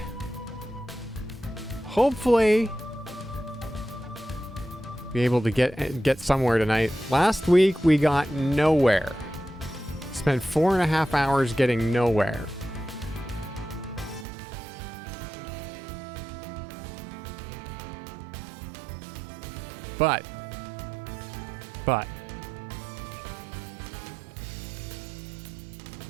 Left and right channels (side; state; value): left; drops out; at 14.2 s